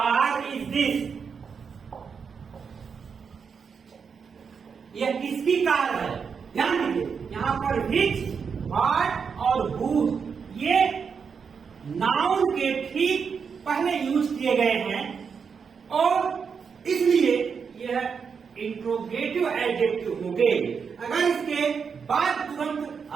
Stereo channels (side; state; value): left; quieter; 6.1 dB